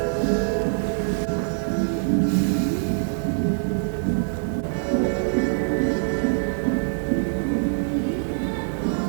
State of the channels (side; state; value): left; silent; 61 dB below the other